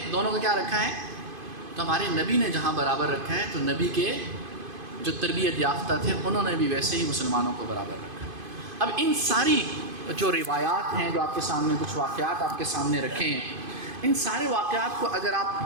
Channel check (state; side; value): late; left; 2.5 ms